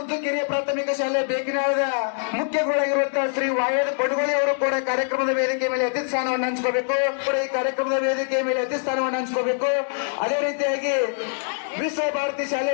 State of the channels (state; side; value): silent; right; digital silence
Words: ಕಿರಿಯ ಪ್ರಾಥಮಿಕ ಶಾಲೆ ಬೇಕಿನಾಳದ ಮುಖ್ಯ ಗುರುಗಳಾಗಿರುವಂತಹ ಶ್ರೀ ವಾಯದ ಬಡಗೋಳಿ ಅವರು ಕೂಡ ಕಾರ್ಯಕ್ರಮದ ವೇದಿಕೆ ಮೇಲೆ ಅತಿಥಿ ಸ್ಥಾನವನ್ನು ಹಂಚ್ಕೋಬೇಕು. ಈ ಕಾರ್ಯಕ್ರಮದ ವೇದಿಕೆ ಮೇಲೆ ಅತಿಥಿ ಸ್ಥಾನವನ್ನು ಹಂಚ್ಕೋಬೇಕು. ಅದೇ ರೀತಿಯಾಗಿ ವಿಶ್ವ ಭಾರತಿ ಶಾಲೆ